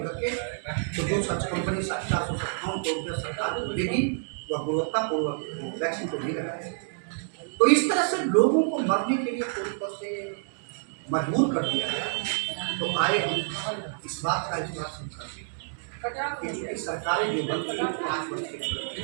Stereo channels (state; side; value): silent; left; digital silence